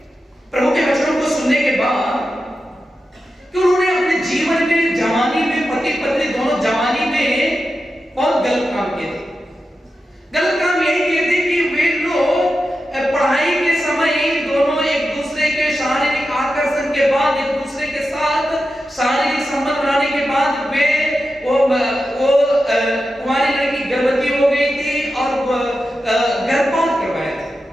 प्रभु के वचनों को सुनने के बाद कि उन्होंने अपने जीवन में, जवानी में, पति पत्नी दोनों जवानी में बहुत गलत काम किए थे। गलत काम यही किए थे कि वे लोग पढ़ाई के समय दोनों एक दूसरे के शारीरिक आकर्षण के बाद, एक दूसरे के साथ शारीरिक संबंध बनाने के बाद वे कुंवारी लड़की गर्भवती हो गई थी और गर्भपात करवाया था।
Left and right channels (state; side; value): normal; both; correlation 0.90